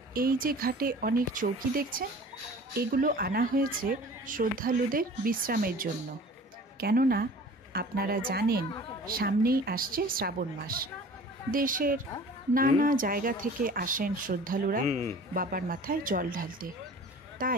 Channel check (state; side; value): normal; both; correlation 0.44